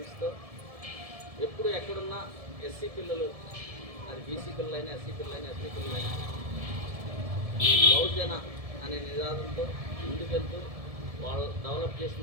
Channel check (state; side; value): late; left; 1.7 ms